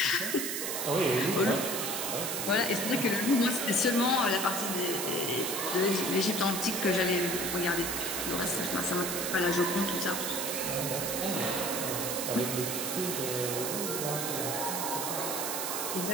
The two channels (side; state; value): right; noise; hiss, 2 dB below the sound